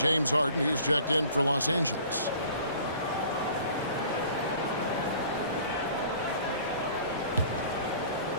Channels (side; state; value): both; inverted; correlation -0.49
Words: Harden, he's checked in for Los Angeles.